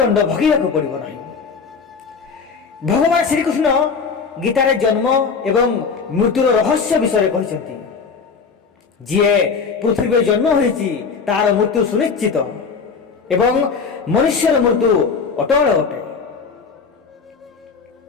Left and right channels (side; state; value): right; quieter; 5.3 dB